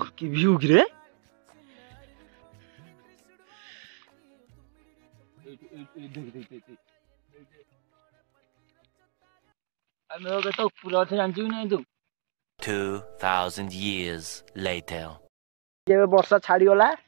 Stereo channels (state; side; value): silent; left; 59 dB below the other